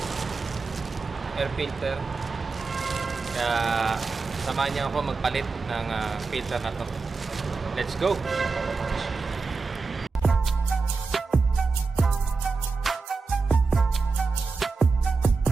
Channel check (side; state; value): left; quieter; 4.3 dB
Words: air filter. Kaya samahan niyo ako magpalit ng filter na to. Let's go!